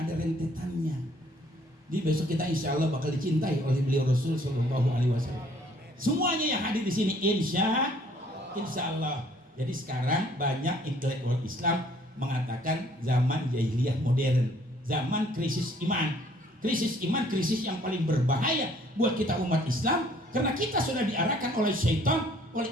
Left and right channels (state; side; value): normal; both; correlation 0.60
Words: rentetannya. Jadi besok kita insya Allah bakal dicintai oleh beliau Rasul Shallallahu Alaihi Wasallam. Semuanya yang hadir di sini insya Allah. Jadi sekarang banyak intelektual Islam mengatakan zaman jahiliyah modern, zaman krisis iman. Krisis iman, krisis yang paling berbahaya buat kita umat Islam, karena kita sudah diarahkan oleh syaitan, oleh